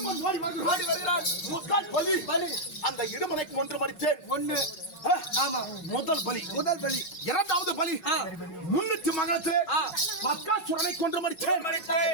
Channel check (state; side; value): late; right; 5.4 ms